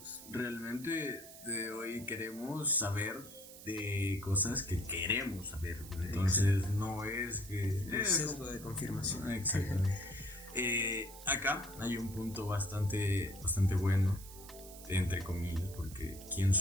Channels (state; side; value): noise; right; hiss, 16 dB below the sound